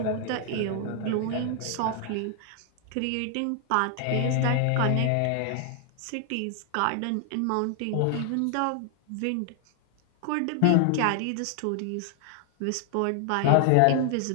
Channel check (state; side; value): different; both; correlation 0.00